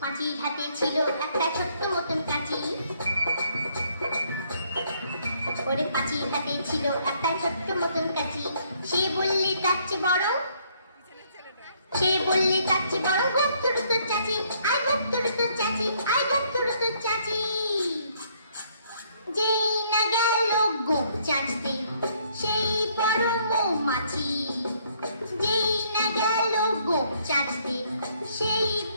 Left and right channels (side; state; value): both; inverted; correlation -0.67